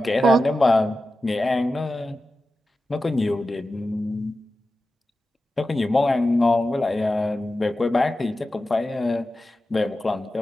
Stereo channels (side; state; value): both; normal; correlation 0.93